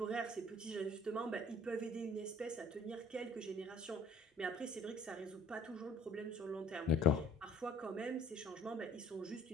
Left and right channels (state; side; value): normal; both; correlation 0.54